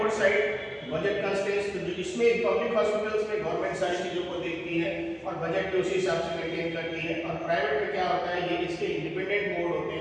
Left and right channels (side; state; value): both; identical; correlation 1.00